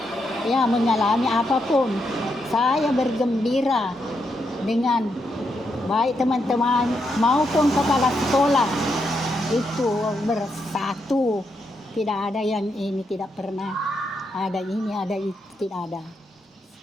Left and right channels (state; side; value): normal; both; correlation 0.81